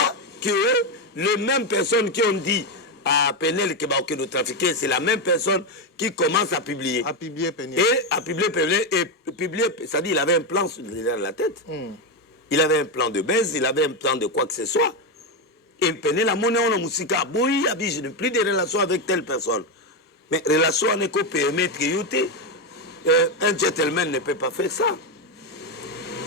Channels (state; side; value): normal; both; correlation 0.09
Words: que les mêmes personnes qui ont dit à Penel que va nous trafiquer, c'est la même personne qui commence à publier. À publier Penel. Et à publier Penel, et publier, c'est-à-dire il avait un plan derrière la tête. Il avait un plan de baisse, il avait un plan de quoi que ce soit. Et Penel a monnaie en musique, oui, je n'ai plus de relations avec telle personne. Mais relation n'est qu'au permettre que un gentleman ne peut pas faire ça.